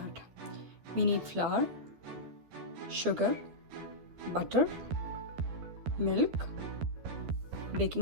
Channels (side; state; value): left; late; 12 ms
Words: We need flour, sugar, butter, milk,